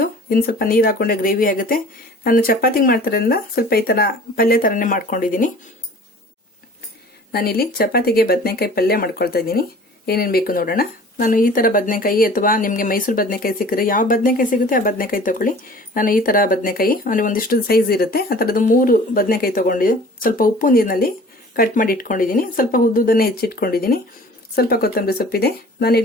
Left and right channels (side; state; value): both; normal; correlation 0.46